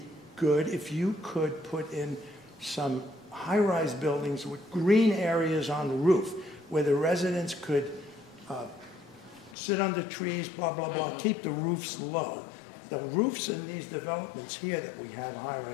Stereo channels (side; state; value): right; drops out; at 9.6 s